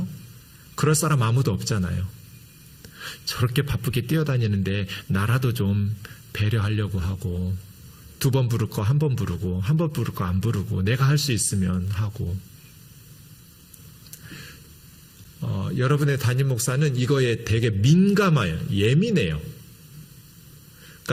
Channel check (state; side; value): identical; both; correlation 1.00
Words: 그럴 사람 아무도 없잖아요. 저렇게 바쁘게 뛰어다니는데 나라도 좀 배려하려고 하고 2번 부를 거 1번 부르고 1번 부를 거 안 부르고 내가 할 수 있으면 하고 여러분의 담임 목사는 이거에 되게 민감해요. 예민해요.